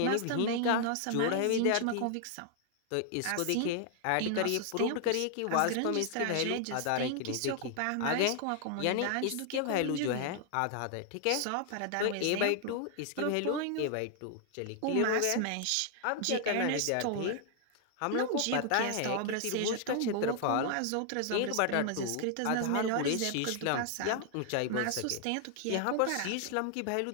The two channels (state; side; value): different; both; correlation 0.00